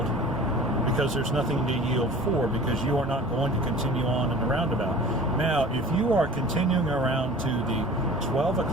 because there's nothing to yield for, because you are not going to continue on in the roundabout. Now, if you are continuing around to the 12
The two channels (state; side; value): normal; both; correlation 0.42